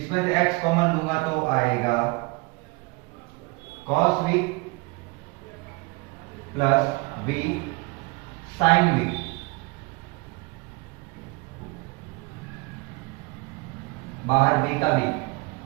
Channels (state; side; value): quieter; left; 26.7 dB